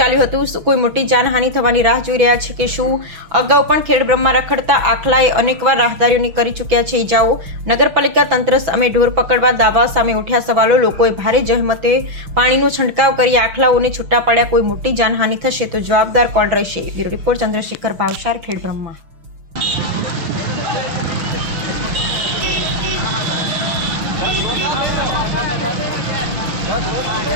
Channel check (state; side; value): late; left; 6.1 ms